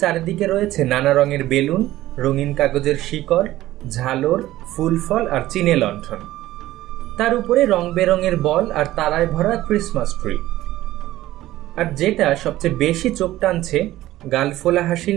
চারিদিকে রয়েছে নানা রঙের বেলুন, রঙিন কাগজের শিকড়, ঝালর, ফুল ফল আর চিনে লণ্ঠন। তার উপরে রং বেরঙের বল আর তারায় ভরা ক্রিসমাস ট্রি। আর যেটা সবচেয়ে বেশি চোখ টানছে, গালফোলা হাসি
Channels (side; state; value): left; quieter; 15.4 dB